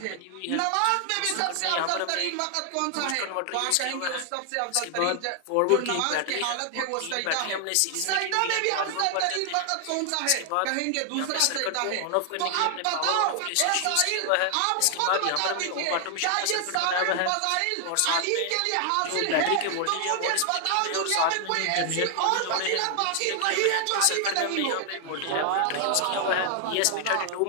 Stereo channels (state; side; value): different; both; correlation 0.00